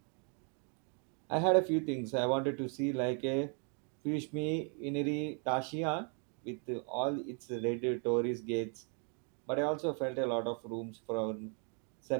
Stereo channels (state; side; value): quieter; left; 38.8 dB